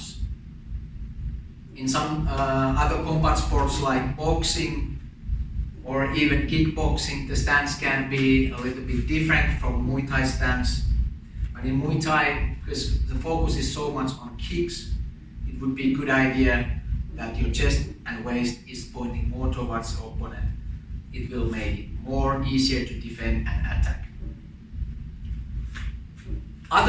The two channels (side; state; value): both; identical; correlation 1.00